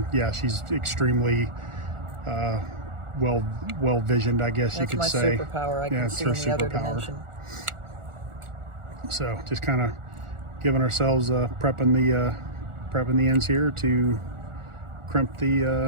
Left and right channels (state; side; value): late; left; 1.4 ms